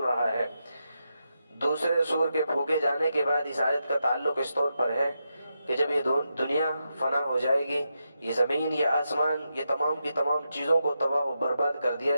ہے۔ دوسرے سور کے پھونکے جانے کے بعد اس آیت کا تعلق اس طور پر ہے کہ جب یہ دنیا فنا ہو جائے گی، یہ زمین، یہ آسمان، یہ تمام کی تمام چیزوں کو تباہ و برباد کر دیا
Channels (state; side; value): inverted; both; correlation -0.86